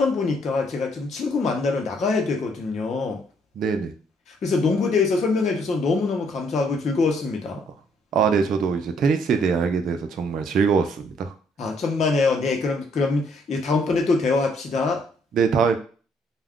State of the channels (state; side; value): normal; both; correlation 0.67